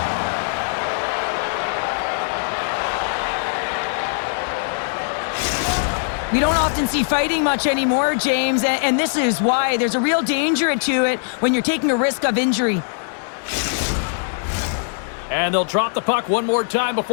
We don't often see fighting much anymore, James, and this is why. There's a real danger to it when you're taking a risk of injury. And they'll drop the puck one more time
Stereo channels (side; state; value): right; silent; 65 dB below the other